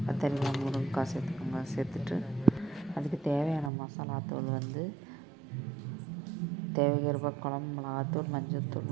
கத்தரிக்காய் முருங்கக்காய் சேர்த்துக்கோங்க. சேர்த்துட்டு அதுக்கு தேவையான மசாலாத்தூள் தேவைக்கிறப்ப குழம்பு மிளகாத்தூள், மஞ்சள்தூள்,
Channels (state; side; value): drops out; left; at 3.7 s